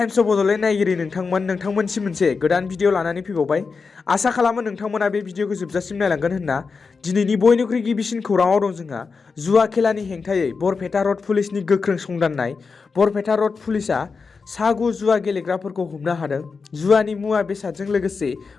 of Bodoland नायगिरि नोंथांमोनसिम मोनसे गोदान भिडिअ लानानै फैबावबाय। आसा खालामो नोंथांमोना बे भिडिअखौ जोबजासिम नायलांगोन होनना। दिनैनि बयनिख्रुइ गिबिसिन खौराङाव दं जोंहा जुवा खेलानि हेंथायै बरपेटा रड पुलिसनि गोख्रों संदाननाय। बरपेटा रड पुलिसआ सा9 जुवा गेलेग्राफोरखौ हमनो हादों। जुवानि मुवा बेसादजों लोगोसे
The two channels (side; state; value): right; quieter; 4.9 dB